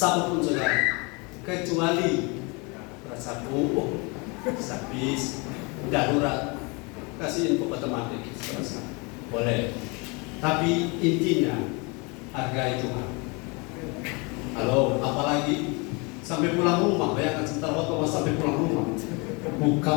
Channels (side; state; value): right; quieter; 29.4 dB